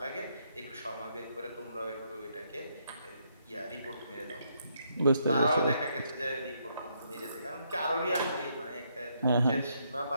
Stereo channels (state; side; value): inverted; both; correlation -0.75